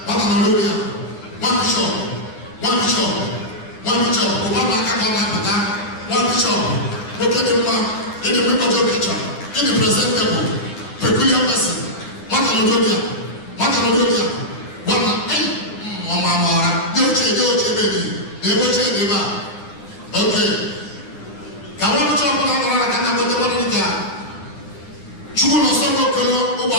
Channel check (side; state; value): right; late; 9.6 ms